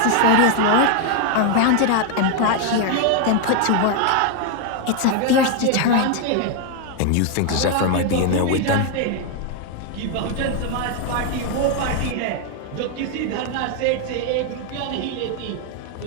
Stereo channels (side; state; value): both; different; correlation 0.00